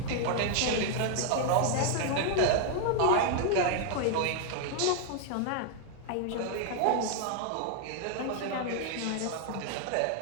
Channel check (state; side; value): different; both; correlation 0.00